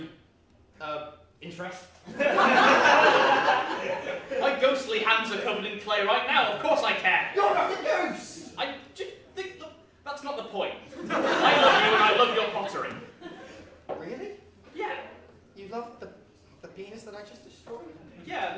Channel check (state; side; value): identical; both; correlation 1.00